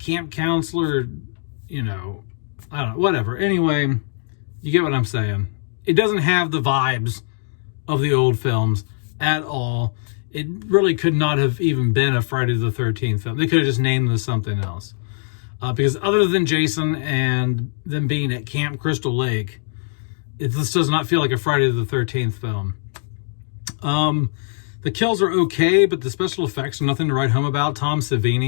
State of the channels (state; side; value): silent; right; digital silence